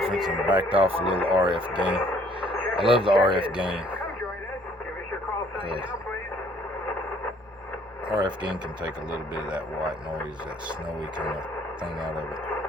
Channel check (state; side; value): normal; both; correlation 0.60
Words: and backed off a little RF gain. I love the RF gain. RF gain can take a little bit of that white noise, that snowy kind of thing out of it.